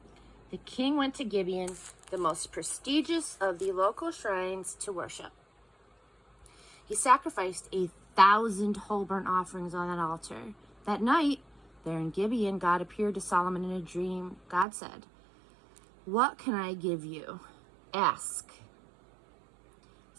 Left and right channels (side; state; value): left; drops out; at 14.7 s